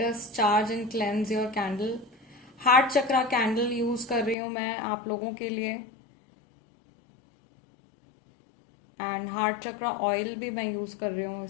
us charge and cleanse your candle. Heart chakra candle use कर रही हूं मैं आप लोगों के लिए एंड हार्ट चक्रा ऑयल भी मैं यूज कर रही हूं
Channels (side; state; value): right; drops out; at 4.4 s